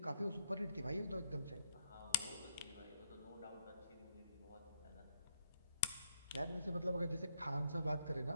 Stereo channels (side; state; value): both; inverted; correlation -0.76